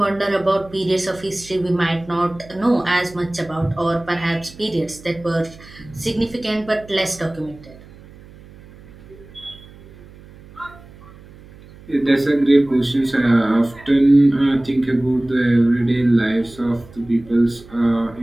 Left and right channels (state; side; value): noise; right; hum, 21 dB below the sound